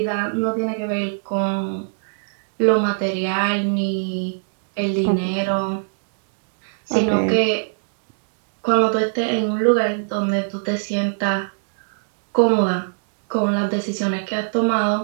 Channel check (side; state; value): left; silent; digital silence